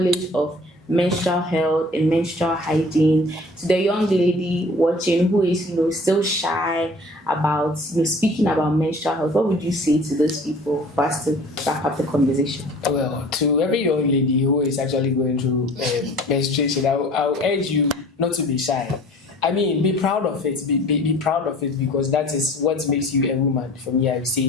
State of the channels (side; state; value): both; normal; correlation 0.47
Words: of menstrual health and menstrual hygiene, to the young lady watching who is still shy about speaking about menstrual health? What would you say to those people for us to wrap up the conversation? Well, to every young lady who is actually going through menstruation, I'll urge you not to be shy. I mean, be proud of it. Be proud of it, because that is what makes you a woman, for me, I would